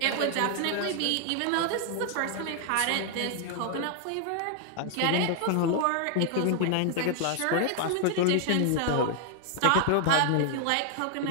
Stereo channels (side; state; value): both; different; correlation 0.00